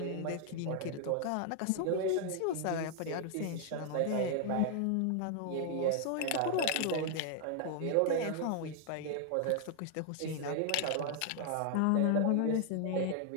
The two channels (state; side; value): different; both; correlation 0.00